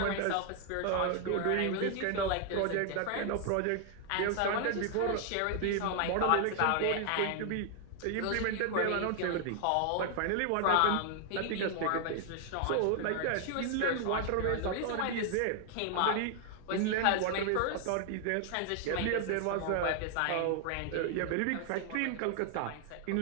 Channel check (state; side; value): different; both; correlation 0.00